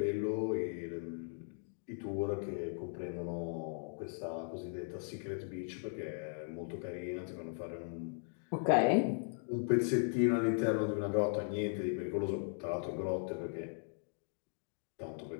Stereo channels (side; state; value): right; silent; digital silence